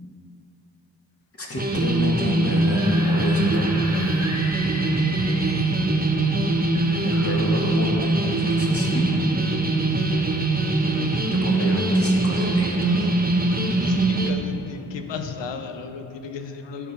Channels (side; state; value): both; normal; correlation 0.66